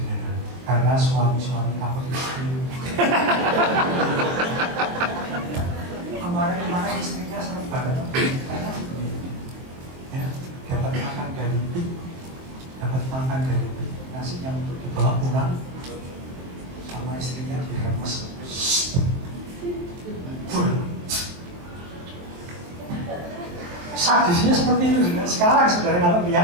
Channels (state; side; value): late; left; 23 ms